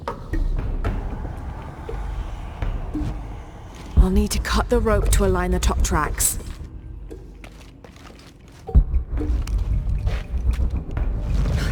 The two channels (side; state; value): both; identical; correlation 1.00